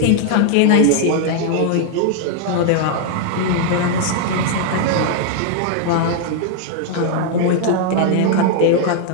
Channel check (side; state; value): both; different; correlation 0.00